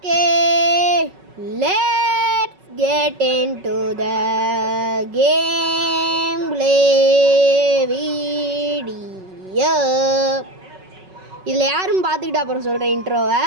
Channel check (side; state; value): left; late; 5.3 ms